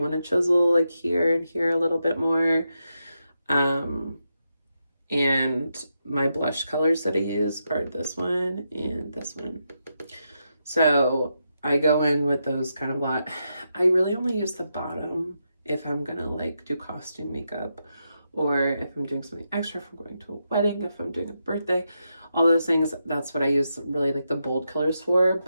want to chisel like here and here a little bit more. And my blush colors that I use are this one and this one. So I go in with those kind of a lot. I really only use the bottom if I'm gonna like do costume makeup, or if I'm doing something extra, if I'm going to a wedding, if I'm doing a birthday, all those things. That's what I use really like the bold colors for.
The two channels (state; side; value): inverted; both; correlation -0.85